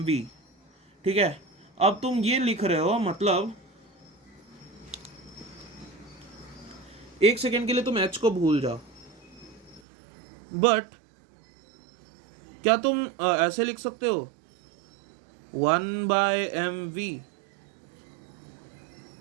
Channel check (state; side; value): drops out; left; at 9.8 s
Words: ठीक है। अब तुम ये लिख रहे हो, मतलब एक सेकेंड के लिए तुम h को भूल जाओ, बट क्या तुम ऐसे लिख सकते हो 1/mv?